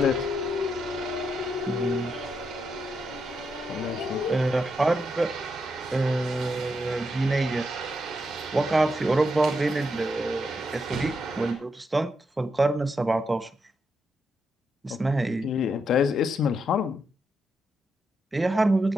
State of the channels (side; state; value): both; normal; correlation 0.82